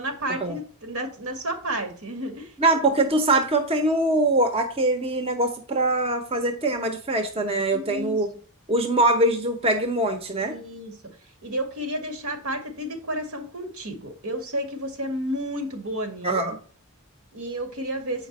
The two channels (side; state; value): both; normal; correlation 0.00